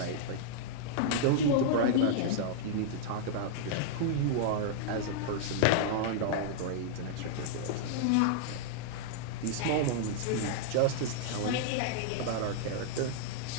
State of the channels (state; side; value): different; both; correlation -0.01